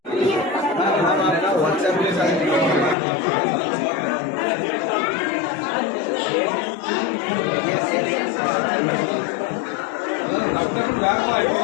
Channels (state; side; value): drops out; right; at 3.0 s